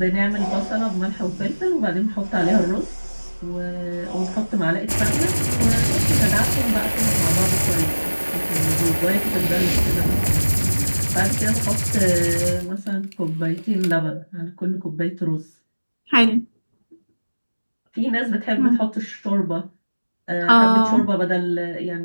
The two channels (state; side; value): inverted; both; correlation -1.00